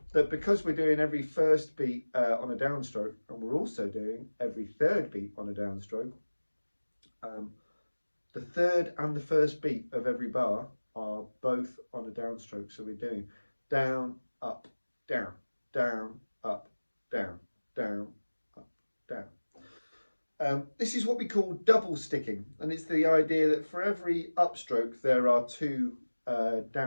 that because we're doing every first beat on a downstroke, and we're also doing every third beat on a downstroke, the third and the first beat of every bar are both on a downstroke. So we're doing down, up, down, down, up, down, down, up, down. This is what we call double sticking, and it's the idea that for every upstroke there are two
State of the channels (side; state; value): both; inverted; correlation -1.00